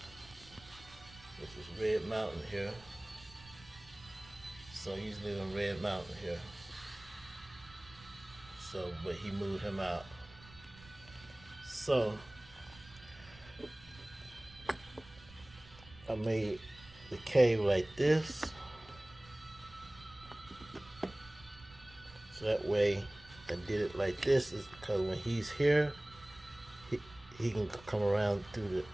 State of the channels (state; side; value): noise; right; rumble, 21 dB below the sound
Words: This is Red Mountain here. So he usually live in Red Mountain here. So, but he moved him out. So I made the cave like this. So that way I did it like this is because when he's here, he can come around through